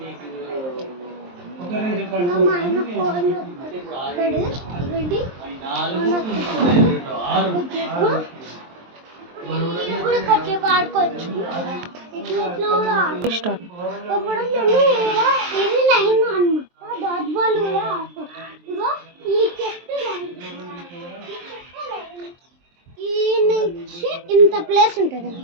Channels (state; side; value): late; left; 23 ms